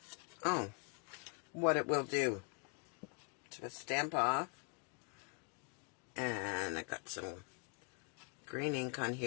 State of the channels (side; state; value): right; quieter; 36.4 dB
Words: Oh, what it will do. So stamp off. And I got some green ink on